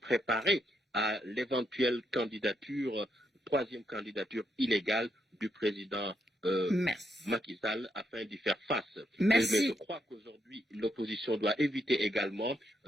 à l'éventuelle candidature, troisième candidature illégale du président Macky Sall afin d'y faire face. Mais je crois qu'aujourd'hui, l'opposition doit éviter également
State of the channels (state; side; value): normal; both; correlation 0.79